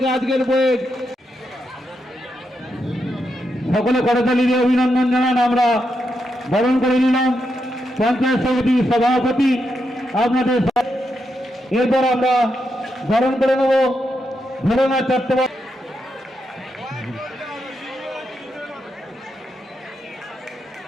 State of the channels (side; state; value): both; normal; correlation 0.83